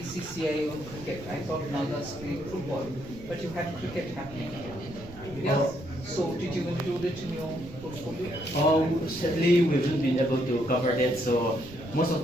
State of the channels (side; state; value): right; noise; rumble, 16 dB below the sound